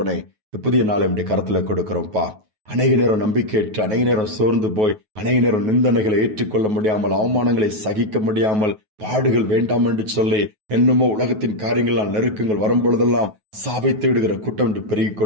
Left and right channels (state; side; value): late; left; 9.3 ms